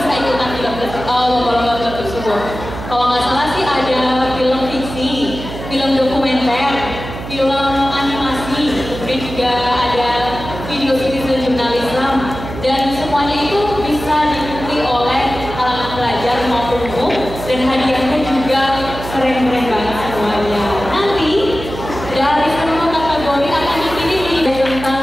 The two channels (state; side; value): noise; right; hum, 10 dB below the sound